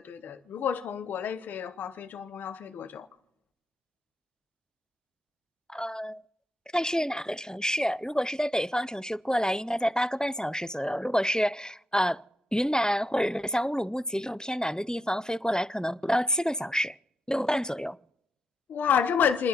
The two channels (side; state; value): both; normal; correlation 0.83